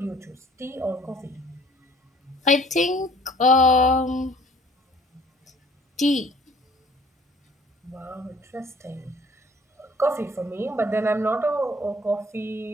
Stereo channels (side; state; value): both; normal; correlation 0.55